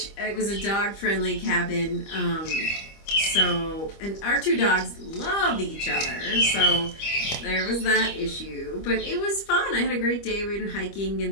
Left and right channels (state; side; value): late; right; 25 ms